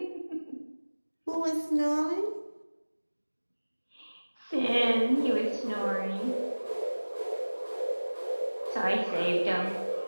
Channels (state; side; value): inverted; both; correlation -1.00